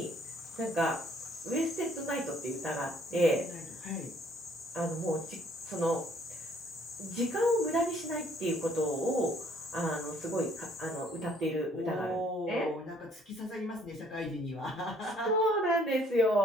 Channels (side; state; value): both; normal; correlation 0.62